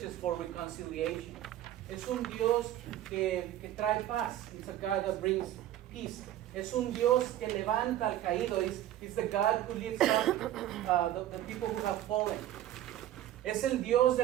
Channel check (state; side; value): quieter; left; 12.8 dB